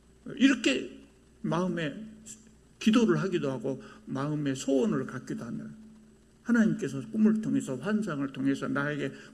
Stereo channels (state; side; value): identical; both; correlation 1.00